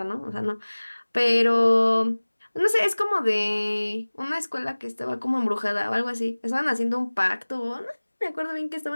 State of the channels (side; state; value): both; inverted; correlation -1.00